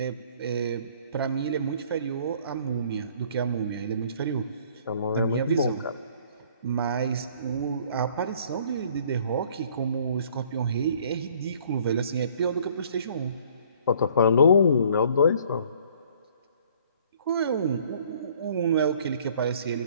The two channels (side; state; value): both; inverted; correlation -0.57